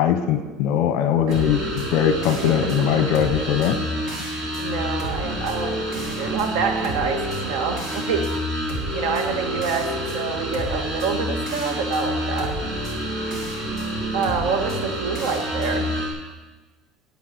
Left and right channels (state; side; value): normal; both; correlation 0.31